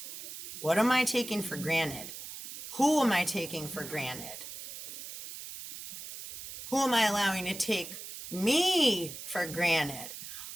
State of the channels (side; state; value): right; noise; hiss, 11 dB below the sound